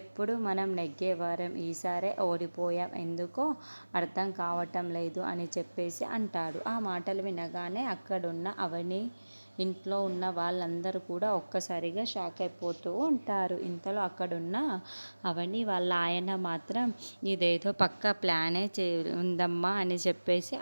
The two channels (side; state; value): both; inverted; correlation -1.00